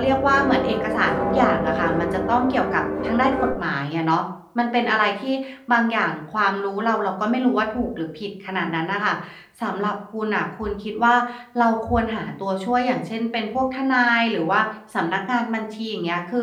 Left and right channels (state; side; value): identical; both; correlation 1.00